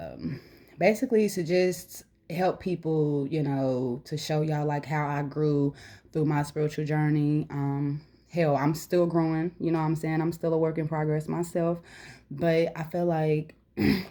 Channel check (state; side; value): identical; both; correlation 1.00